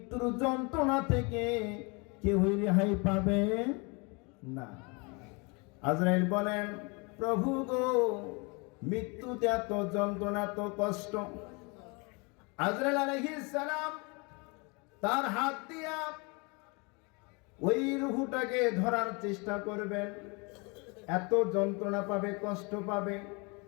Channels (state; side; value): quieter; right; 30.1 dB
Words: যন্ত্রণা থেকে কেউই রেহাই পাবে না। আজরাইল বলেন, প্রভু গো, মৃত্যুতে এত যন্ত্রণা, এত কষ্ট। আজরাইল আলাইহিস সালাম তার হাত দিয়া ওই রূহটাকে ধরার চেষ্টা করবেন, এত যন্ত্রণা পাবে, কষ্ট পাবে।